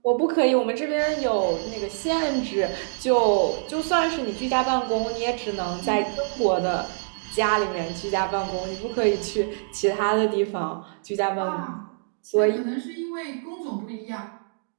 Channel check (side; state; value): left; silent; digital silence